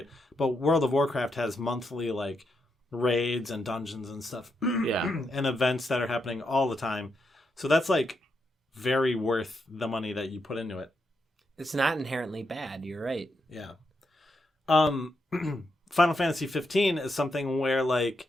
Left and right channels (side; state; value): both; normal; correlation 0.82